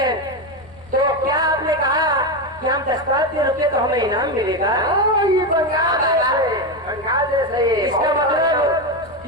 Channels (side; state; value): left; noise; rumble, 24 dB below the sound